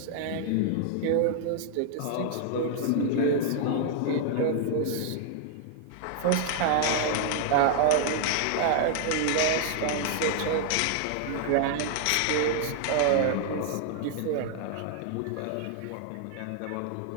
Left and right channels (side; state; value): both; different; correlation 0.00